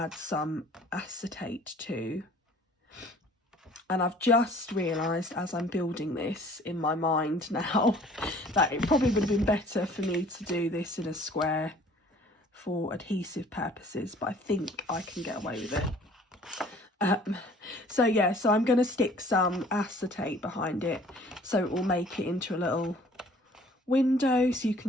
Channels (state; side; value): normal; both; correlation 0.53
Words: some acetate to. And I've just realised as I'm building this in my mind now that it probably would have been better for me to do this in a square for adhesive purposes, but I think I can get away with it. So yeah, so I'm going to stick some acetate behind it so it will make it into a little window so you